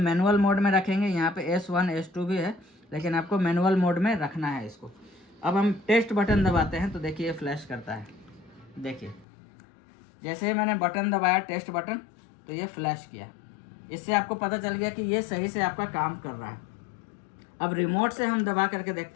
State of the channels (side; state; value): right; drops out; at 9.2 s